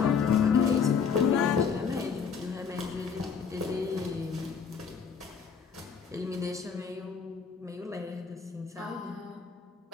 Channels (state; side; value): quieter; right; 6.2 dB